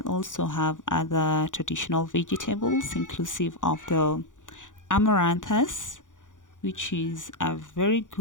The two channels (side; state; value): right; late; 0.87 ms